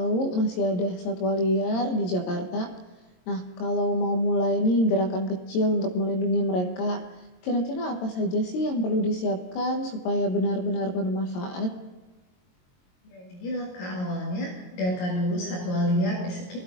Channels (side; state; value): right; late; 22 ms